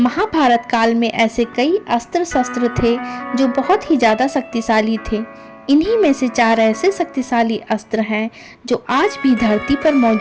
काल में ऐसे कई अस्त्र शस्त्र थे जो बहुत ही ज़्यादा शक्तिशाली थे। इन्हीं में से 4 ऐसे शक्तिशाली अस्त्र हैं जो आज भी धरती पर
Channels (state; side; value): identical; both; correlation 1.00